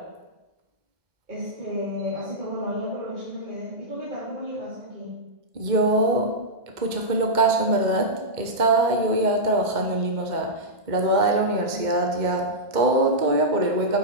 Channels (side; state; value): left; late; 2.1 ms